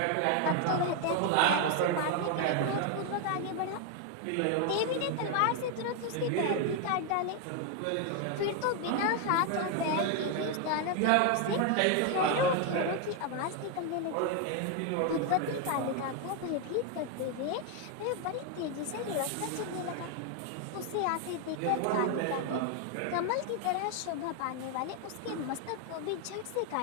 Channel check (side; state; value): both; different; correlation 0.01